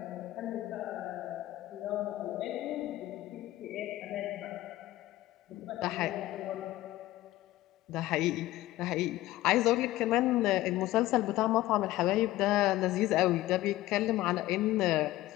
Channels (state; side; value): quieter; right; 16.2 dB